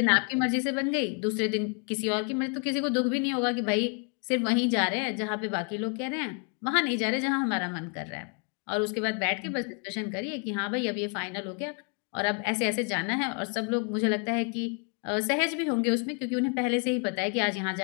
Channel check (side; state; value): right; quieter; 38.4 dB